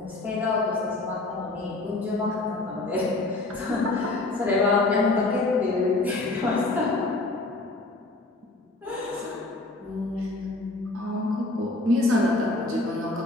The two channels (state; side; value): quieter; right; 3.0 dB